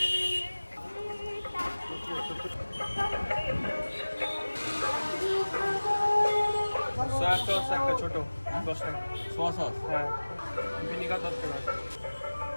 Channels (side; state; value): both; inverted; correlation -1.00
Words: সয়া সস একটা ছোট 10 টাকা। Soya sauce? হ্যাঁ, ভিনিগার 10 টাকা।